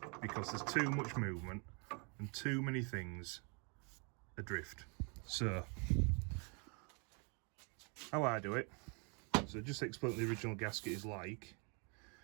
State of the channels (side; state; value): left; quieter; 35.5 dB